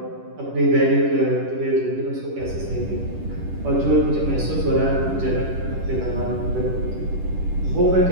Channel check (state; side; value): late; left; 10 ms